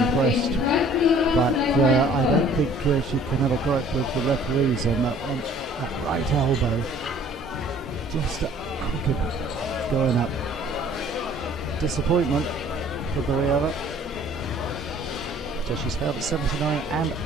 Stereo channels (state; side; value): normal; both; correlation 0.53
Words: but I don't think she can have a gripe with the referees on that one. That right elbow, just crooked, going up. Disappointment for Berieva. So she's failed at 79 and